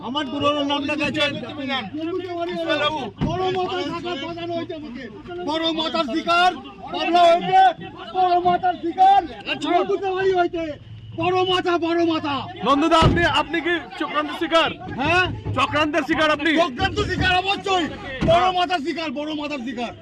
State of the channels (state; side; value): identical; both; correlation 1.00